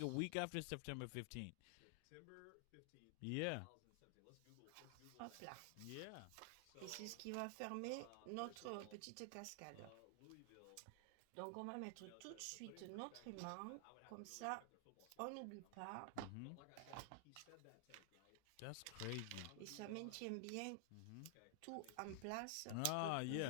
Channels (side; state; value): both; different; correlation 0.00